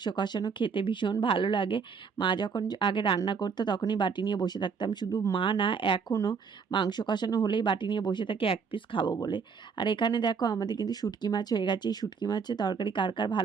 কষানো খেতে ভীষণ ভালো লাগে। মা যখন আগে রান্না করতো তখনই বাটি নিয়ে বসে থাকতাম, শুধু মা না, এখনও মাংস কষানো হলেই বাটি নিয়ে বসে থাকে এক পিস খাবো বলে। আর এখানে দেখো আমাদের কিন্তু শুটকি মাছ হয়ে গেছে। এই শুটকি মাছের তরকারি কার কার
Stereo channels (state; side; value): quieter; left; 5.8 dB